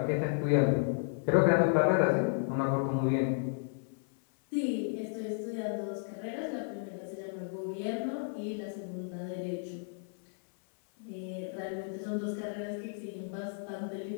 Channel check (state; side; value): silent; right; 56 dB below the other